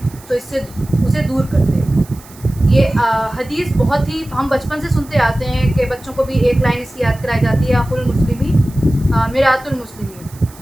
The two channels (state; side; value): noise; right; hiss, 22 dB below the sound